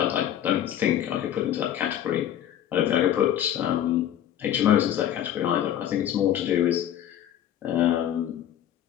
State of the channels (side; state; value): right; quieter; 11.0 dB